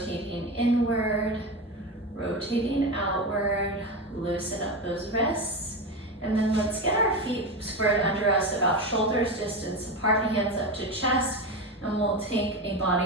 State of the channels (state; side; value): normal; both; correlation 0.19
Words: inward, rotating outward. Loosen up those wrists. And then let's get our feet squared under us about shoulders distance apart, hands up to chest. And we'll take a body